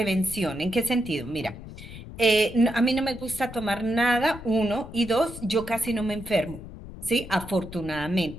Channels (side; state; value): left; noise; rumble, 13 dB below the sound